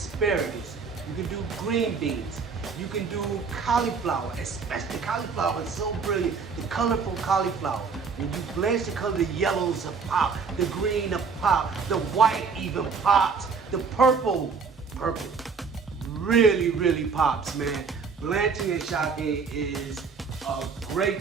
You can do green beans. You can do cauliflower, especially cauliflower is so brilliant. The colorful cauliflower. When you blanch the color, the yellows will pop, the green will pop, the white even pops, the purple really pops, man. Blanching and shocking is a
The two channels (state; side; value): quieter; left; 5.3 dB